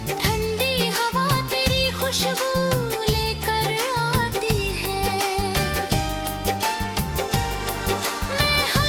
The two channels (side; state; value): both; identical; correlation 1.00